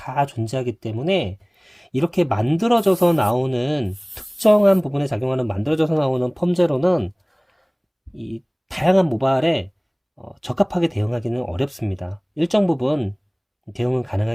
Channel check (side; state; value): both; identical; correlation 1.00